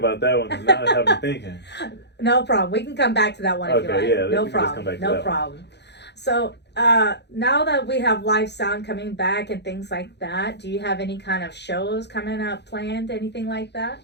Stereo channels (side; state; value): right; late; 0.50 ms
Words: that one because now I have me thinking. No problem. We can come back to that one if you like. Yeah, no problem. No problem. So now that we have live sound coming back and things like that, do you have any kind of shows coming up planned? Anything like that?